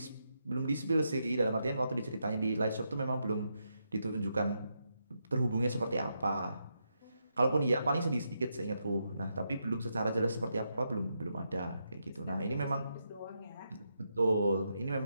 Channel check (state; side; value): inverted; both; correlation -0.82